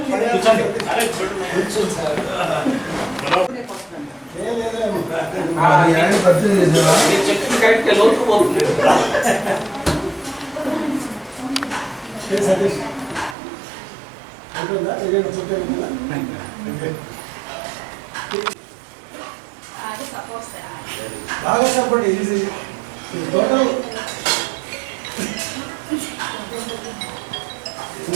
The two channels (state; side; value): drops out; left; at 13.4 s